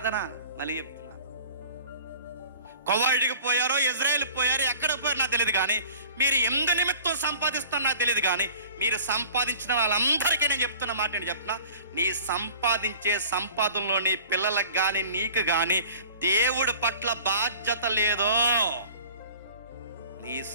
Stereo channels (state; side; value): inverted; both; correlation -0.44